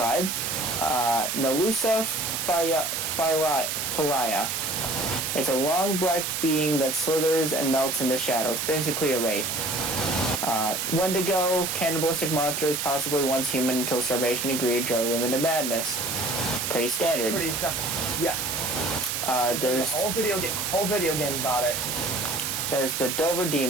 Nalusa Faria. It's a long black being that slithers and melts into shadows, basically a wraith. Wendigo, cannibalistic monsters, possibly once human until starvation and greed drove them into madness. Pretty standard. Yeah. There's a whole video game about it. There's the Dover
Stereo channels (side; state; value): right; noise; hiss, 1 dB below the sound